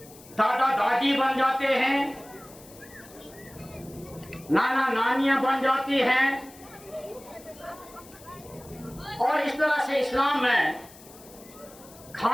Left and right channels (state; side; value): noise; left; hiss, 21 dB below the sound